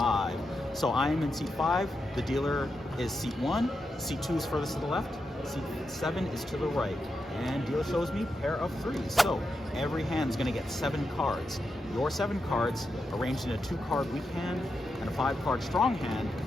So I am in seat 5, the dealer is seat 1, seat 2 is furthest to the left, seat 7 is to the right, and dealer shows me pair of 3s. So every hand is going to get 7 cards. Your 7 cards, arranged in a 2-card weak hand and a 5-card strong hand,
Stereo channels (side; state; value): both; normal; correlation 0.86